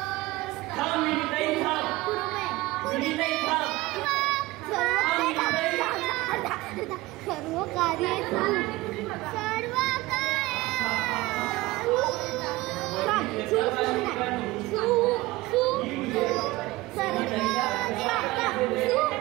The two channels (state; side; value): quieter; left; 19.7 dB